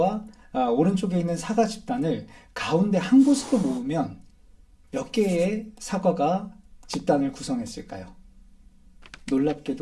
오른쪽에 있는 사과 집단을 가운데 한 곳으로 모으면 몇 개의 사과가 집단을 구성했을까요?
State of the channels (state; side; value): identical; both; correlation 1.00